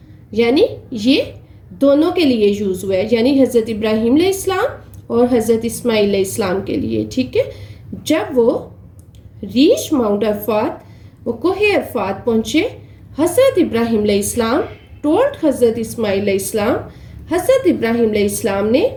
یعنی یہ دونوں کے لیے یوز ہوا ہے, یعنی حضرت ابراہیم علیہ السلام اور حضرت اسماعیل علیہ السلام کے لیے, ٹھیک ہے. جب وہ ریچ ماؤنٹ عرفات, وہ کوہ عرفات پہنچے, حضرت ابراہیم علیہ السلام ٹولڈ حضرت اسماعیل علیہ السلام, حضرت ابراہیم علیہ السلام نے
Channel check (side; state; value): both; identical; correlation 1.00